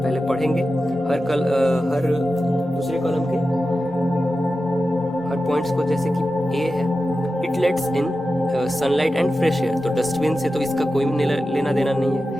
पढ़ेंगे हर दूसरे कॉलम के हर पॉइंट्स को, जैसे कि ए है, it let's in sunlight and fresh air. तो डस्टबिन से तो इसका कोई लेना देना नहीं है,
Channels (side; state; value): both; normal; correlation 0.92